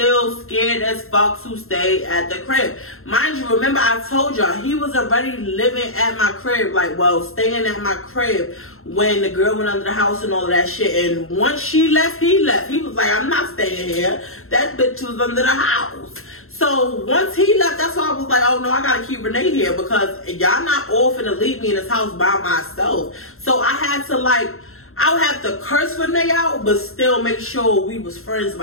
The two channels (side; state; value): right; late; 0.62 ms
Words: scared as fuck to stay at the crib. Mind you, remember I told y'all, he was already living at my crib, like, well, staying at my crib when the girl went under the house and all of that shit. And once she left, he left. He was like, I'm not staying here. That bitch was under the house. So once he left, that's why I was like, oh no, I gotta keep Renee here because y'all not all finna leave me in this house by myself. So I had to I would have to curse Renee out, but still make sure we was friends